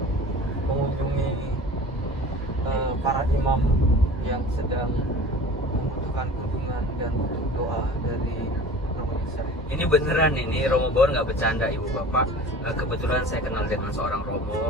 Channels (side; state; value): both; normal; correlation 0.40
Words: mengunjungi para imam yang sedang membutuhkan kunjungan dan butuh doa dari Romo Yosef. Ini beneran ini Romo Baur nggak bercanda ibu bapak. Kebetulan saya kenal dengan seorang